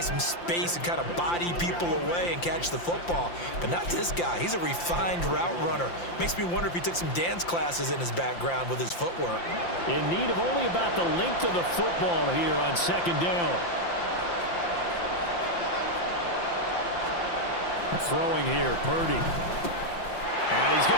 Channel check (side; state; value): right; late; 5.8 ms